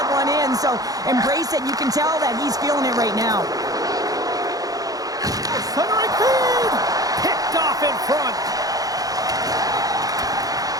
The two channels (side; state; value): left; late; 0.18 ms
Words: one in. So embrace it. You can tell that he's feeling it right now. Centering feed! Picked off in front.